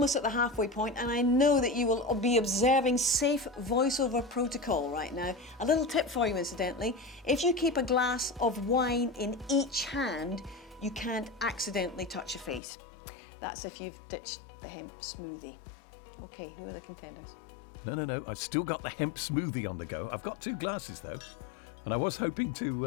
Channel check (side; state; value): right; drops out; at 12.6 s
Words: at the halfway point, and I know that you will be observing safe voiceover protocol right now. A little tip for you, incidentally. If you keep a glass of wine in each hand, you can't accidentally touch your face. That's if you've ditched the hemp smoothie. Okay, who are the contenders? No. I've still got the hemp smoothie on the go. I've got 2 glasses, though, and I was hoping